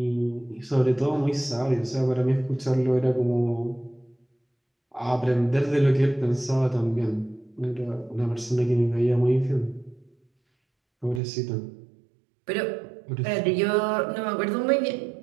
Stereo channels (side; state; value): left; drops out; at 11.2 s